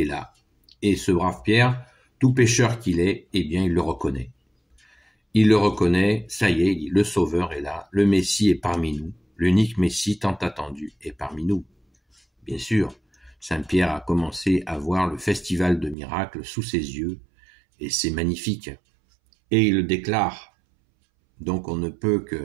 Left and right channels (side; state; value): left; drops out; at 16.0 s